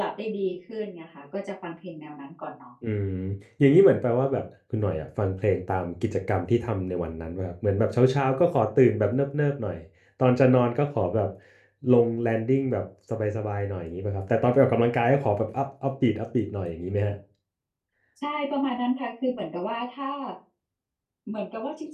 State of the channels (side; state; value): both; identical; correlation 1.00